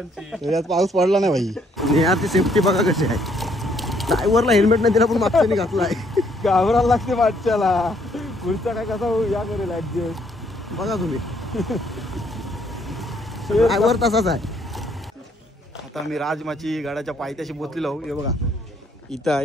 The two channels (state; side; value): normal; both; correlation 0.68